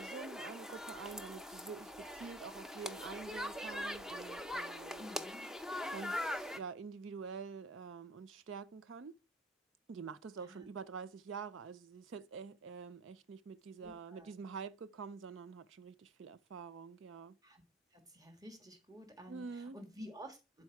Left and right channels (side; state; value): both; normal; correlation 0.51